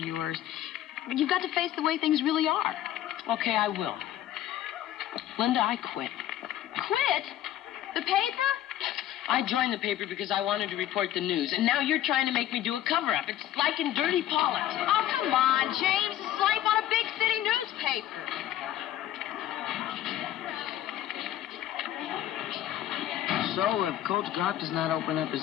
But you've got to face the way things really are. Okay, I will. Linda, I quit. Quit? The paper? I joined the paper because I wanted to report the news, and now you're trying to make me do a cover-up. It's like in dirty politics. Oh, come on, James. It's life on a big city newspaper. So, if Coach Goff does not open up his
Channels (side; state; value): right; quieter; 12.6 dB